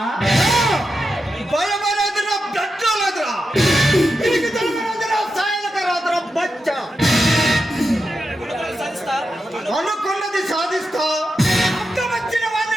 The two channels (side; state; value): both; normal; correlation 0.88